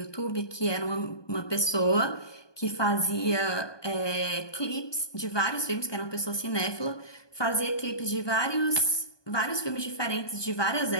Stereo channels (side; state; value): right; late; 1.2 ms